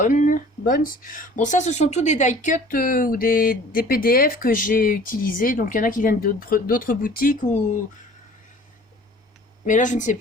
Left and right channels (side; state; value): both; normal; correlation 0.48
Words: Bon, ça, ce sont tous des die cut ou des PDF que j'ai utilisés. Donc il y en a qui viennent d'autres boutiques ou... Mais là, je ne sais